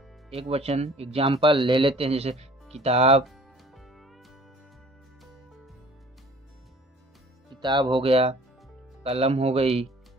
एक वचन एग्जाम्पल ले लेते हैं, जैसे किताब, किताब हो गया, कलम हो गई,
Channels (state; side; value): normal; both; correlation 0.50